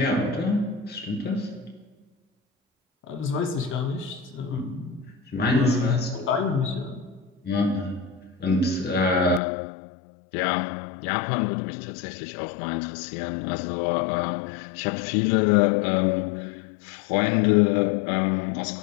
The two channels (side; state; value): right; drops out; at 9.4 s